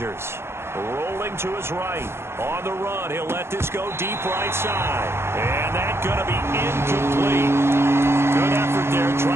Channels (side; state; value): left; late; 0.12 ms